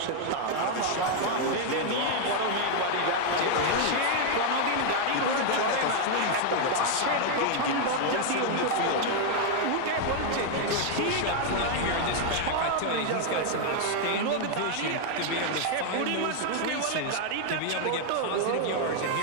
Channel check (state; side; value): different; both; correlation 0.00